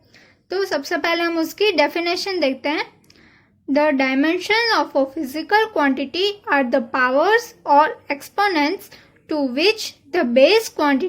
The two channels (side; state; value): both; identical; correlation 1.00